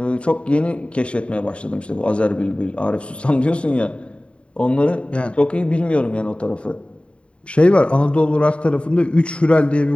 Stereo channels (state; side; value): late; right; 0.059 ms